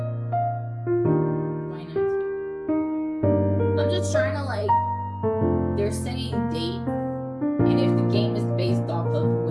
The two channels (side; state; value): both; identical; correlation 1.00